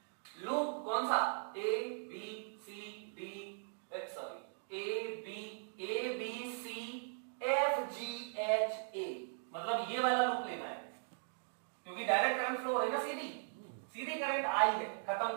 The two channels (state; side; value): silent; left; digital silence